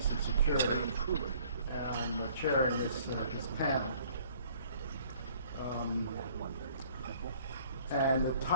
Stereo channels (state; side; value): inverted; both; correlation -0.57